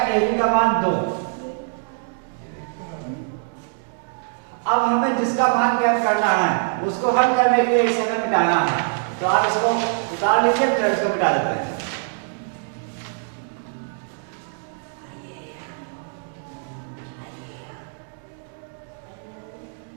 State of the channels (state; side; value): silent; left; 63 dB below the other